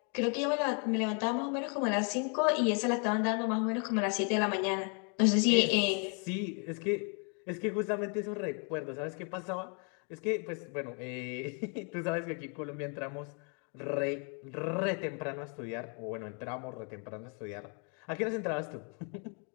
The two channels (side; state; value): right; quieter; 38.4 dB